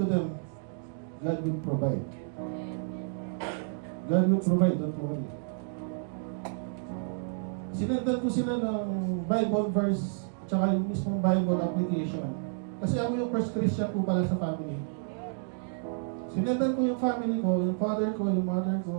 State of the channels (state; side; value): silent; left; digital silence